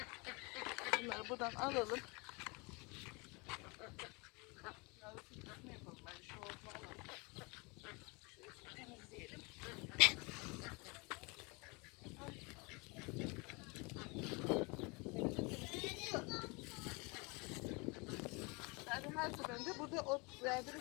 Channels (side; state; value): right; quieter; 28.5 dB